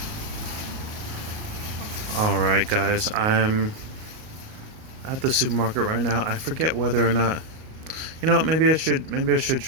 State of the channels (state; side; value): late; left; 38 ms